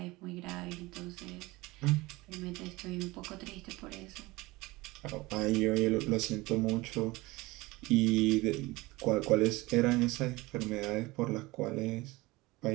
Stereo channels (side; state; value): left; quieter; 21.5 dB